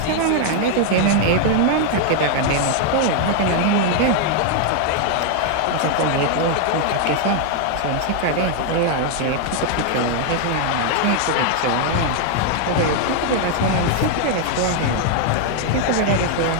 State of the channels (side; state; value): both; different; correlation 0.00